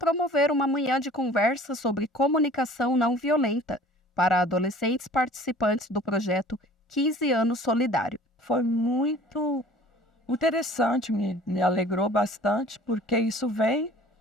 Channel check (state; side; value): normal; both; correlation 0.48